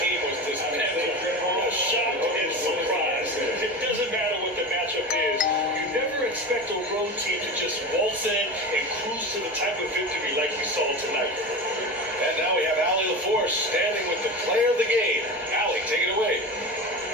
was dismantled. Shocked and surprised. It doesn't matter what the matchup is. You never expect a road team to just waltz in and cruise to the type of victory like we saw tonight. And now we have Allie LaForce course, standing with the player of the game. Allie, take it away.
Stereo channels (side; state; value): both; normal; correlation 0.27